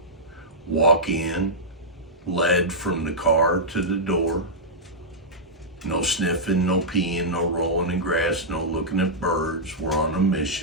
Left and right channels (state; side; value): normal; both; correlation -0.10